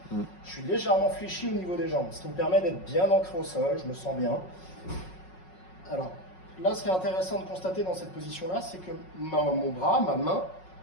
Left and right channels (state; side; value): late; right; 5.4 ms